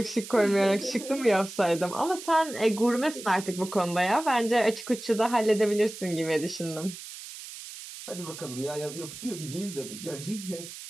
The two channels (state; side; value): noise; right; hiss, 12 dB below the sound